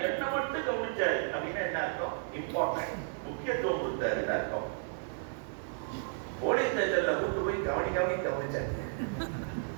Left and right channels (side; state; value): left; silent; digital silence